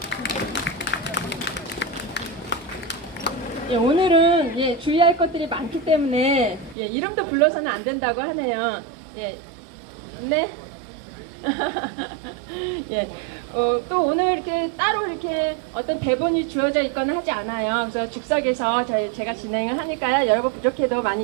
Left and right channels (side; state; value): left; drops out; at 6.8 s